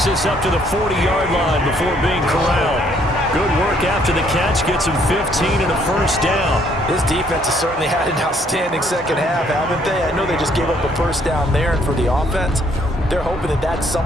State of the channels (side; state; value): both; normal; correlation 0.66